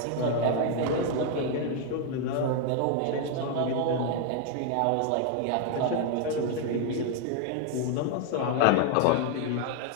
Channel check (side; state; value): both; different; correlation 0.00